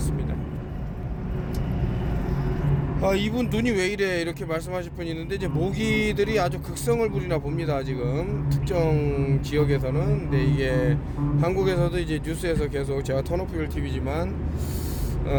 이분 눈이 왜 이래 이렇게 말씀하실 분이 있는데, 이제 모기들이 아주 극성을 부리나 봅니다. 지금 특정 지역에서는. 근데 이게 한국에서도 이제 뉴스에서 계속, 제가 턴오프힐 TV지만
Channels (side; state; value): both; identical; correlation 1.00